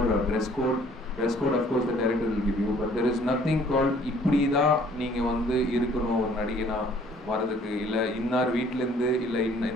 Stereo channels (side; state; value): both; normal; correlation 0.57